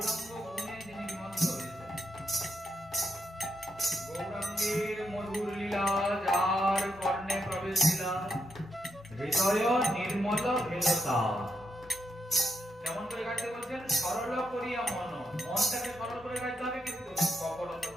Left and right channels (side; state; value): both; normal; correlation 0.81